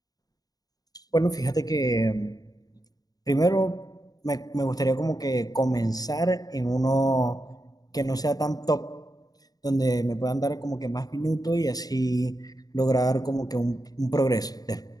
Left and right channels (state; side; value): late; right; 0.18 ms